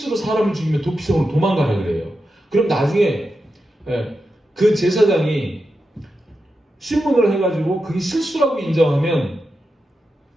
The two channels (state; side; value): normal; both; correlation 0.88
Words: 사람을 죽이면 도피성으로 도망가라 그래요. 그럼 나중에 그 제사장이 신문을 해가지고 그게 실수라고 인정하면